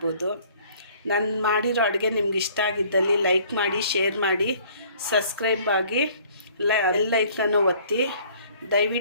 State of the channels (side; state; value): both; inverted; correlation -0.55